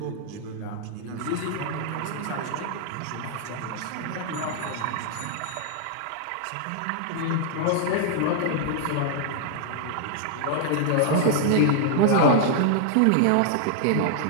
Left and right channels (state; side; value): different; both; correlation -0.01